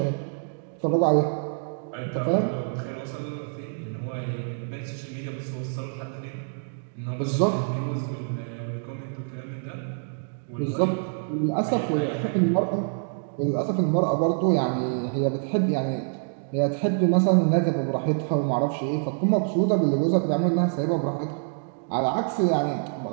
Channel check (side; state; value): left; silent; digital silence